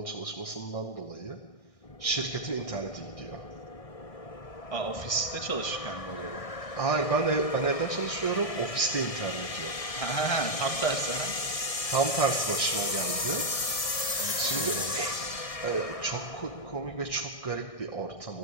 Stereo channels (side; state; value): right; late; 1.6 ms